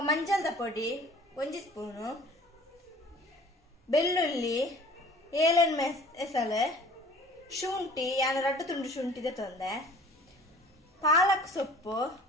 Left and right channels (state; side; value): normal; both; correlation 0.49